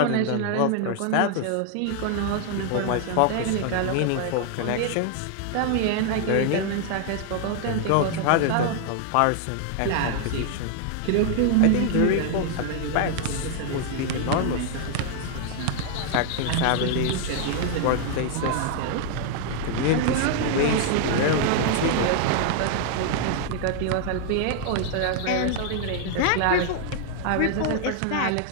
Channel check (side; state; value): both; different; correlation 0.00